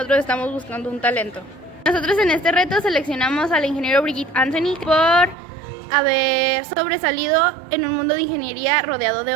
estamos buscando un talento. Nosotros en este reto seleccionamos al ingeniero Brigitte Anthony por haber sobresalido en un mundo de ingeniería rodeado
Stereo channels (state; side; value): drops out; left; at 5.4 s